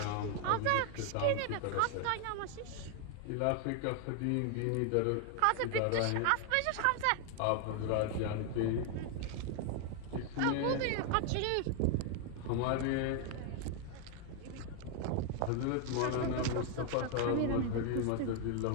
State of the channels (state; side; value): different; both; correlation 0.00